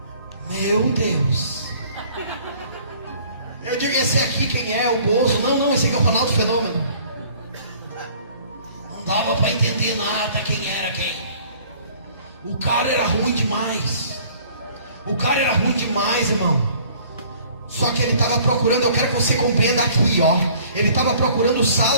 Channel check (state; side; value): inverted; both; correlation -0.54